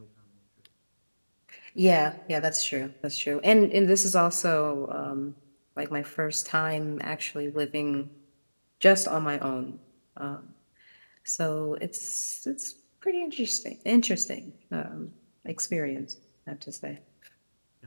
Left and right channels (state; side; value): inverted; both; correlation -1.00